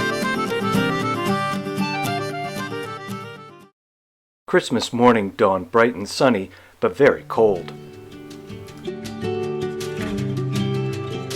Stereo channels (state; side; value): identical; both; correlation 1.00